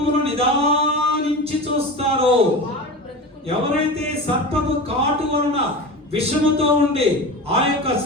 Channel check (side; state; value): both; normal; correlation 0.29